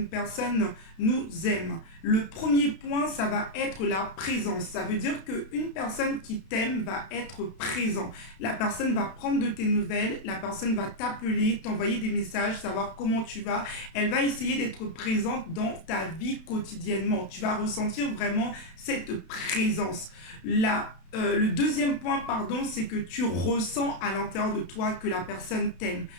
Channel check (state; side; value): late; right; 32 ms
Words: personne nous aime? Le premier point, ça va être la présence. Ça veut dire qu'une personne qui t'aime va être présent. La personne va prendre de tes nouvelles, la personne va t'appeler, t'envoyer des messages, savoir comment tu vas. Elle va essayer d'être présente dans ta vie quotidiennement. Tu vas ressentir vraiment cette présence. Le deuxième point, pardon, c'est que tu ressens à l'intérieur de toi que la personne t'aime.